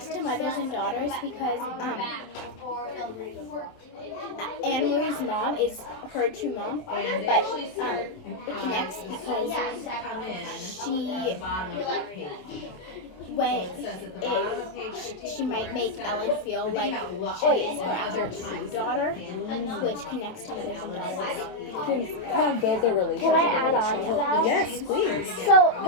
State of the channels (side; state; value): right; late; 27 ms